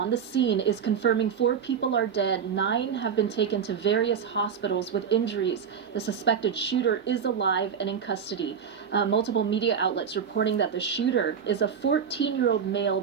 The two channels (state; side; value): quieter; left; 7.3 dB